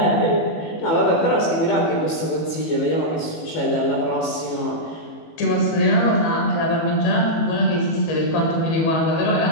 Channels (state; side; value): late; right; 18 ms